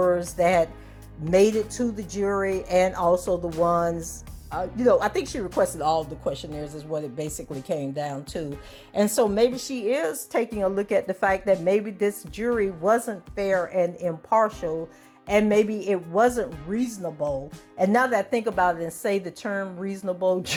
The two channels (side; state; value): both; identical; correlation 1.00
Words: that made it to the jury, and also the ones, I think she requested all of the questionnaires is what it basically came down to. And so maybe she is taking a look at the fact that maybe this jury wasn't fair and impartial, and maybe it wasn't reasonable. And now that I think about it and say the term reasonable,